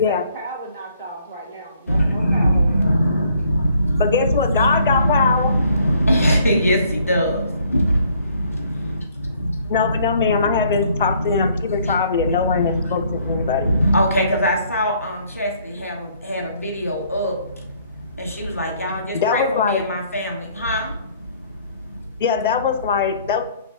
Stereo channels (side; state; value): both; inverted; correlation -0.63